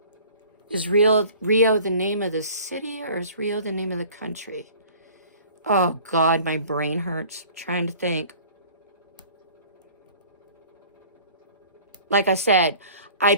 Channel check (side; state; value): both; inverted; correlation -0.48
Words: Is Rio the name of the city, or is Rio the name of the country? Oh, God, my brain hurts trying to think. Like I said, I